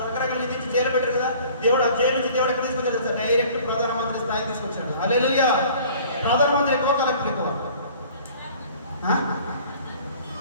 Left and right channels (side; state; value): both; inverted; correlation -0.50